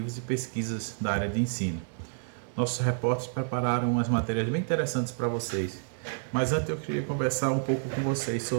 e pesquisas da área de ensino. Nossos repórteres prepararam umas matérias bem interessantes para vocês. Mas antes eu queria conversar um pouco com vocês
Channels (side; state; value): left; silent; digital silence